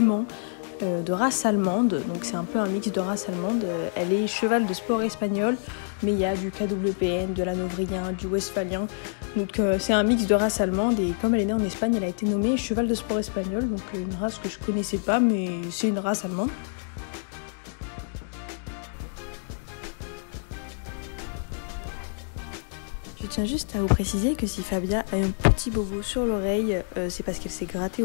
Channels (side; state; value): right; silent; digital silence